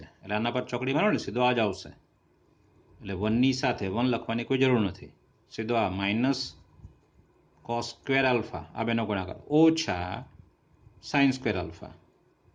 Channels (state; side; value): identical; both; correlation 1.00